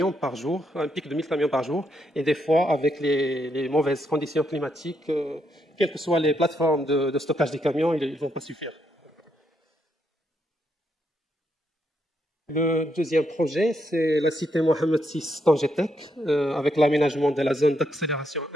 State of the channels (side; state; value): both; normal; correlation 0.78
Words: par jour, un pic de 1000 camions par jour, et des fois, avec les mauvaises conditions climatiques, quelles que soient les plateformes de stockage des camions, ils ne vont pas suffire. Le deuxième projet, c'est la cité Mohamed VI Tangetek, avec l'aménagement de la zone d'accélération